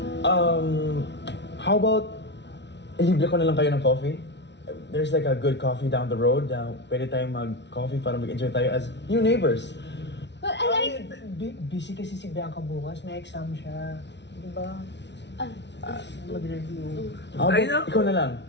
How about ilibre ko na lang kayo ng coffee? There's like a good coffee down the road. Pwede tayong mag-coffee para mag-enjoy tayo as new neighbors. But I like... Busy kasi si Bianca bukas, may exam siya. Di ba? Mag-review. How Ay, about naku. ikaw na lang?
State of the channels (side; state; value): right; late; 0.51 ms